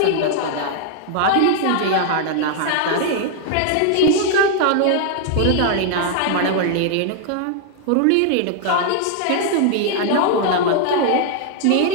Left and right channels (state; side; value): different; both; correlation 0.00